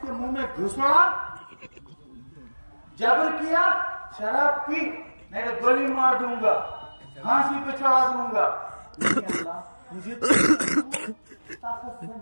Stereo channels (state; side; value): inverted; both; correlation -1.00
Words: کے منہ میں گھسڑا؟ جبر کیا، شراب پی، میں گولی مار دوں گا، پھانسی پہ چڑھا دوں گا. لیکن اللہ مجھے طاقت سے